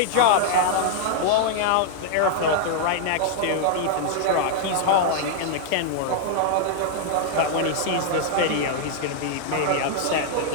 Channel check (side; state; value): both; different; correlation -0.01